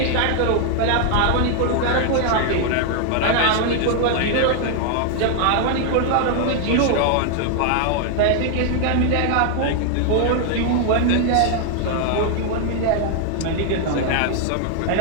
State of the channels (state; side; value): different; both; correlation 0.00